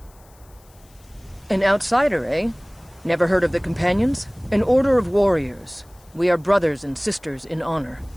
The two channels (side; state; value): left; noise; hiss, 29 dB below the sound